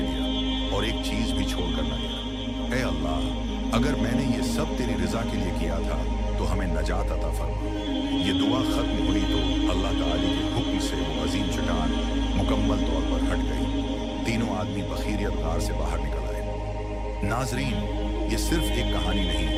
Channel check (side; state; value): both; identical; correlation 1.00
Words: और एक चीज भी छोड़कर न गया। ए अल्लाह, अगर मैंने ये सब तेरी रजा के लिए किया था तो हमें नजात अता फरमा। ये दुआ खत्म हुई तो अल्लाह ताला के हुक्म से वो अजीम चट्टान मुकम्मल तौर पर हट गई। तीनों आदमी बखीरियत गार से बाहर निकल आए। नाजरीन, ये सिर्फ एक कहानी